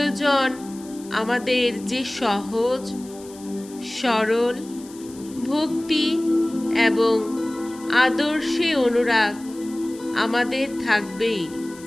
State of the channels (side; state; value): left; noise; hiss, 21 dB below the sound